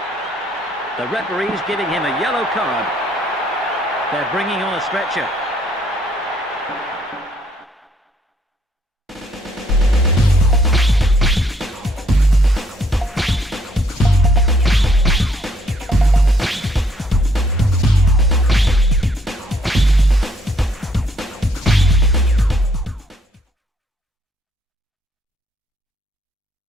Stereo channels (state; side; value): normal; both; correlation 0.67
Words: The referee's giving him a yellow card. They're bringing on a stretcher.